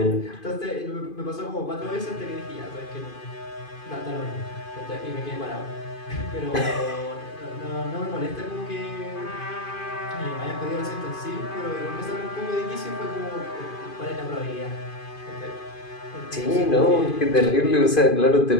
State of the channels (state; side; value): late; right; 2.5 ms